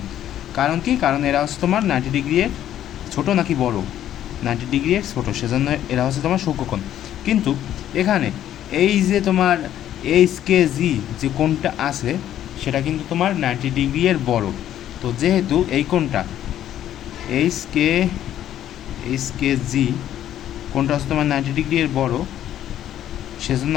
কারণ কি? কারণ এরা হচ্ছে তোমার 90 ডিগ্রি এর ছোটো নাকি বড়? 90 ডিগ্রি এর ছোটো, সেজন্য এরা হচ্ছে তোমার সূক্ষ্মকোণ। কিন্তু এখানে এই যে তোমার এইচ কে জি যে কোণটা আছে সেটা কিন্তু তোমার 90 ডিগ্রি এর বড়। তো যেহেতু এই কোণটা এইচ কে জি কোণটা হচ্ছে তোমার 90 ডিগ্রি এর বড়, সেজন্য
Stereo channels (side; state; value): right; quieter; 11.5 dB